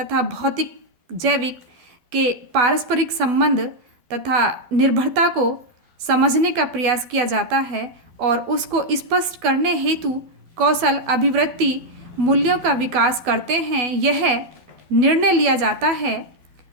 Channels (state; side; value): late; left; 12 ms